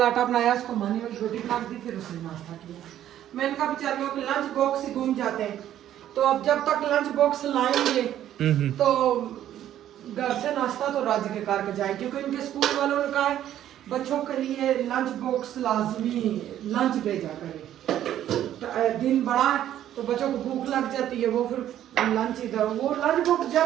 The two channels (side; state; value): left; quieter; 11.6 dB